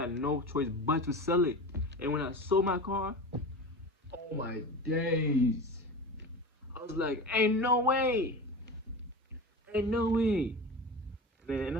no choice but to sell it. And when I sold my car, oh my days. I was like, ain't no way. Ain't no way. And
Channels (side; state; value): both; normal; correlation 0.29